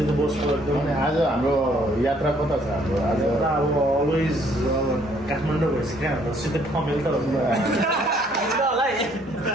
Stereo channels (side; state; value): both; normal; correlation 0.64